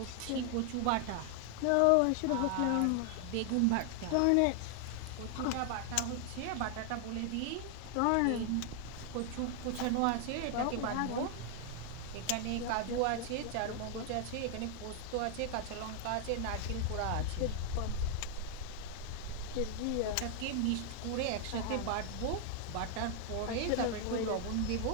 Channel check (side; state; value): both; different; correlation 0.00